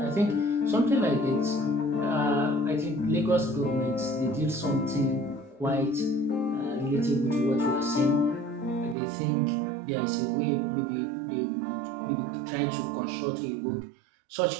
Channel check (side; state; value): left; drops out; at 9.0 s